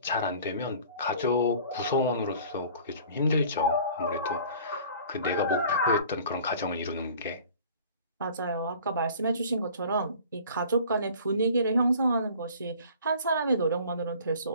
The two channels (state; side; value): inverted; both; correlation -0.47